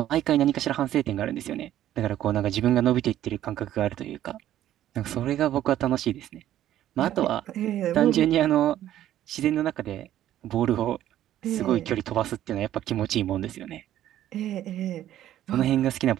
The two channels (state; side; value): quieter; left; 12.4 dB